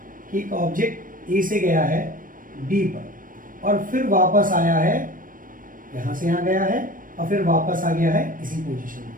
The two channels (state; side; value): late; left; 0.40 ms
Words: कि एक ऑब्जेक्ट ए से गया है बी पर और फिर वापस आया है, यहाँ से यहाँ गया है और फिर वापस आ गया है इसी पोजीशन में